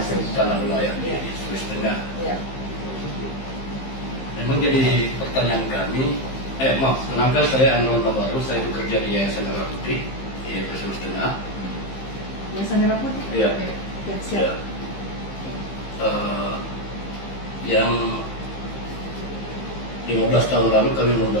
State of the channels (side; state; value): right; late; 15 ms